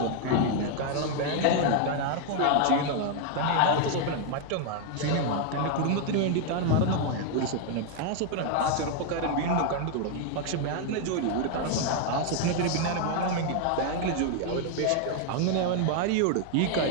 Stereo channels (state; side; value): different; both; correlation 0.00